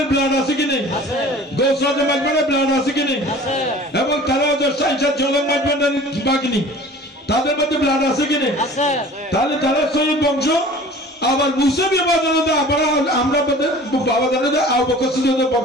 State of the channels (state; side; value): normal; both; correlation 0.44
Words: ব্লাড আছে কি নেই? আছে। গৌসল মাইজভান্ডারির ব্লাড আছে কি নেই? আছে। এবং তারা সাইনসাদ জলম মাইজভান্ডারির বাকি নেই, তাদের মধ্যে ব্লাড আছে কি নেই? আছে। তাহলে তারা শহীদ বংশ। আবার মুসাবিয়া বাবা আমরা বাবা জানে আবু বকর সিদ্দিকের